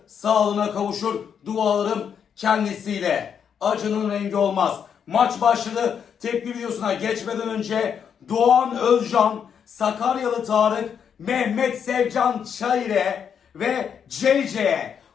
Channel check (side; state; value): right; quieter; 7.6 dB